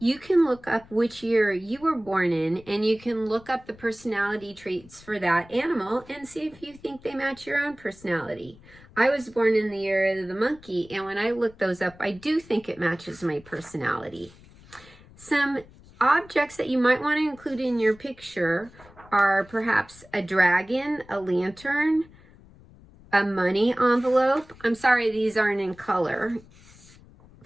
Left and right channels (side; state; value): left; noise; rumble, 24 dB below the sound